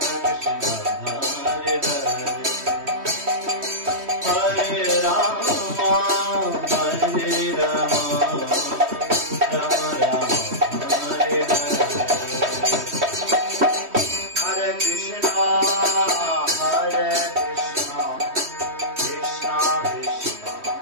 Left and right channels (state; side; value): late; left; 3.1 ms